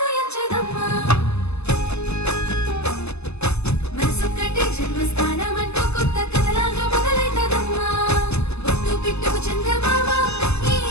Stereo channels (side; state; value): right; late; 0.80 ms